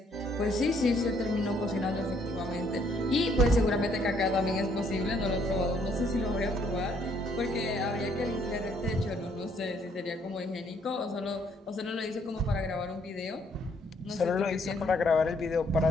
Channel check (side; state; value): both; normal; correlation 0.67